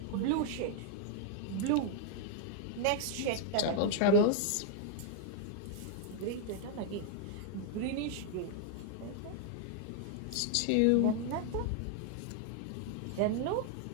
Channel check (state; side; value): different; both; correlation 0.00